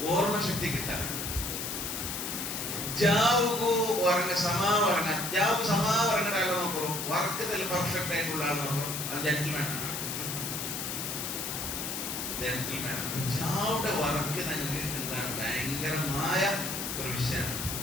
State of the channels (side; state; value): left; noise; hiss, 4 dB below the sound